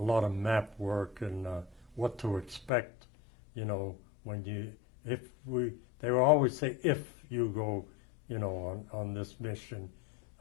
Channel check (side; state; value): right; drops out; at 2.7 s